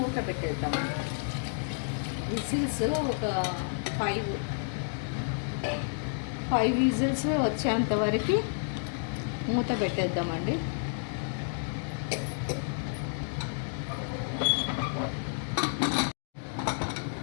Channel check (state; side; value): silent; right; digital silence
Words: పెట్టేద్దాం. విజిల్స్ ఒక 5 విజిల్స్ వచ్చేంత వరకు మూత పెట్టేద్దామండి.